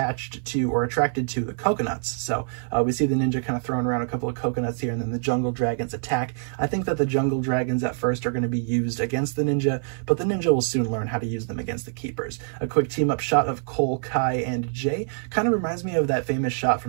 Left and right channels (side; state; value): left; silent; 57 dB below the other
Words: to or attracted to the coconuts. So we see the ninja kind of throwing around a couple of coconuts here, and then the jungle dragons attack. I think that the jungle dragons at first are going to be used against the ninja, but the ninja will soon learn how to use them against the Keepers. A quick team-up shot of Cole, Kai, and Jay kind of reminds me of that famous shot